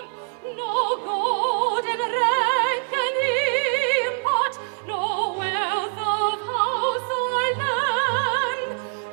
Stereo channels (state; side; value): silent; left; digital silence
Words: no golden rank can he impart, no wealth of house or land,